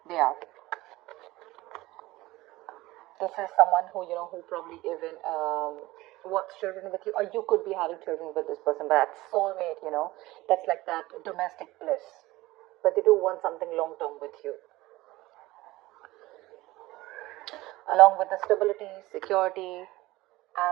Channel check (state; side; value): quieter; left; 18.8 dB